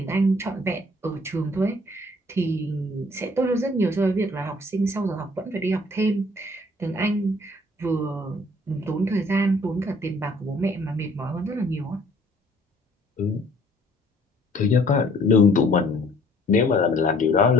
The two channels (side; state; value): both; normal; correlation 0.58